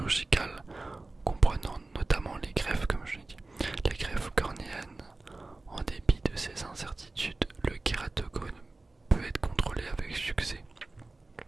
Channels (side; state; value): left; quieter; 3.2 dB